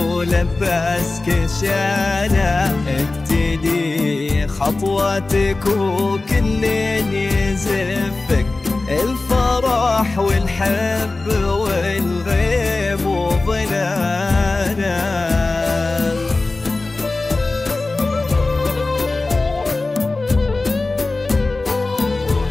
شاله، ابتدي خطواتك وكل يزفك، الفرح والحب والغيب وظلاله.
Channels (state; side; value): quieter; right; 3.3 dB